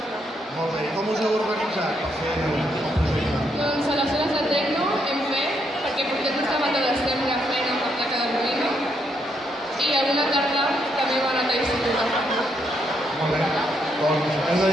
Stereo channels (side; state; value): both; normal; correlation 0.76